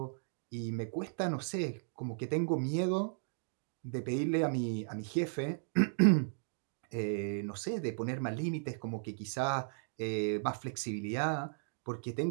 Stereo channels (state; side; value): silent; left; digital silence